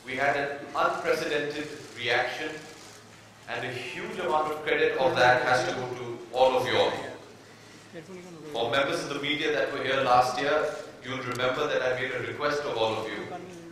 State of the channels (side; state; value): both; identical; correlation 1.00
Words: We had an unprecedented reaction, and a huge amount of credit of that has to go to all of you all. For members of the media that were here last year, you'll remember that I made a request of all of you.